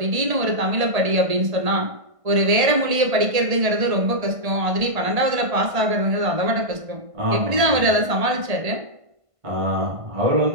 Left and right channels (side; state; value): left; late; 1.5 ms